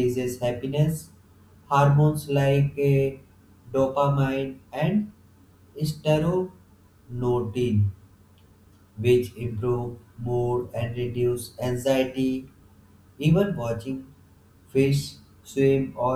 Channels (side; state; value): both; identical; correlation 1.00